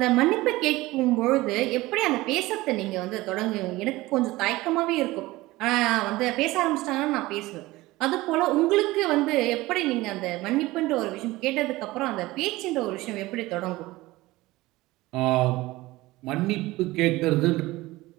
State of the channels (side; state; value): left; quieter; 19.2 dB